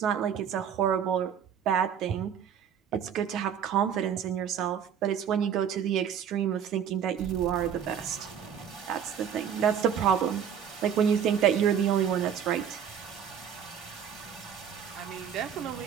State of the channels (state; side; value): quieter; left; 8.5 dB